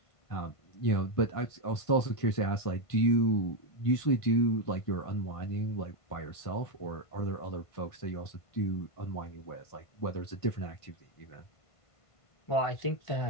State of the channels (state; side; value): late; right; 1.5 ms